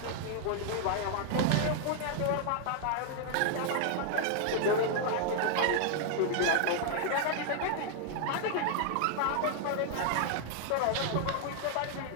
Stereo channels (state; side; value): different; both; correlation 0.00